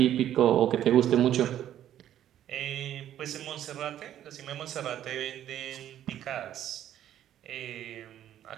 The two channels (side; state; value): left; quieter; 11.4 dB